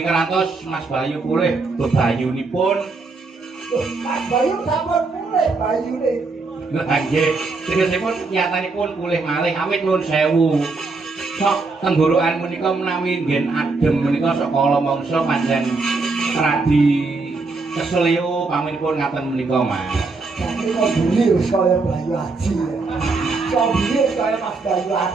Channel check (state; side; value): quieter; left; 3.9 dB